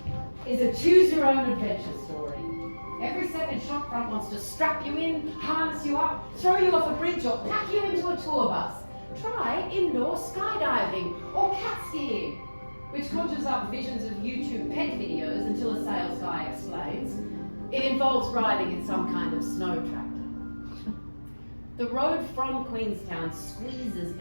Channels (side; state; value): both; inverted; correlation -1.00